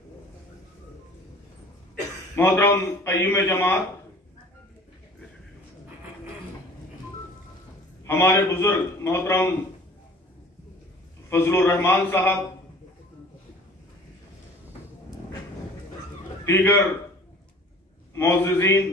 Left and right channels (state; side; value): normal; both; correlation 0.47